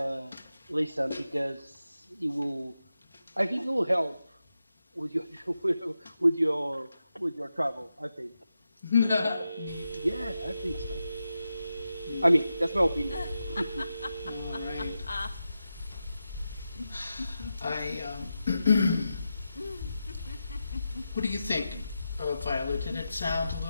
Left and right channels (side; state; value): both; inverted; correlation -0.90